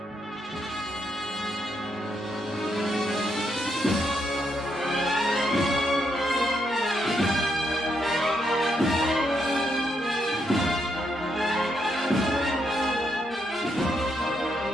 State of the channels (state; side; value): normal; both; correlation 0.78